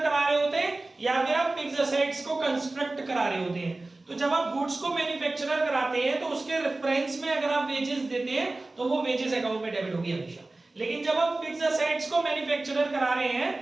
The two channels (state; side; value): quieter; left; 3.0 dB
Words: करा रहे होते हैं या फिर आप फिक्स्ड असेट्स को कंस्ट्रक्ट करा रहे होते हैं। तो जब आप गुड्स को मैन्युफैक्चरर कराते हैं तो उसके रेफरेंस में अगर आप वेजेस देते हैं तो वो वेजेस अकाउंट में डेबिट होगी हमेशा। लेकिन जब आप फिक्स्ड असेट्स को मैन्युफैक्चरर करा रहे हैं